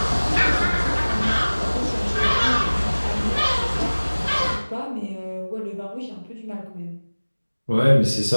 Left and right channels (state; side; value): inverted; both; correlation -1.00